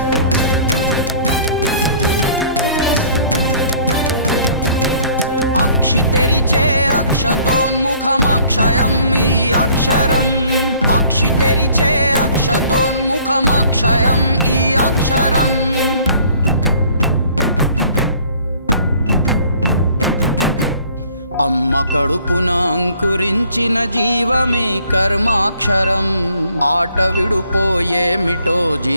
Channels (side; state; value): both; inverted; correlation -0.56